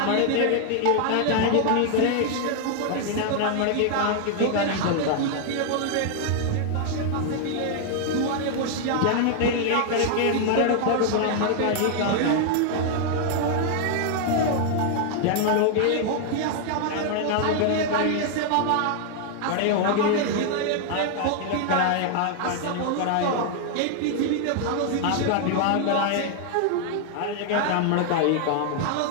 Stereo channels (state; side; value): different; both; correlation 0.00